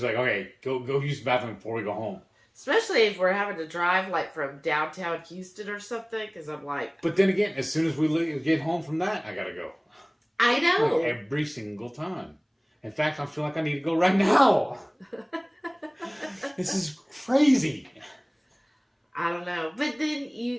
like, okay, go use the bathroom before we go home. Especially if we're having to drive, like, from downtown Houston or something, because I'm like... But then again, as soon as we get home from that, I gotta go. I know. Like every single time. In fact, I feel like I need to go right now. This is crazy. I don't know. But then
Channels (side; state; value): both; identical; correlation 1.00